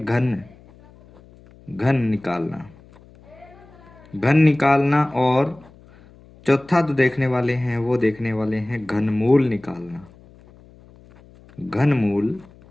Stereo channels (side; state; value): left; noise; hum, 25 dB below the sound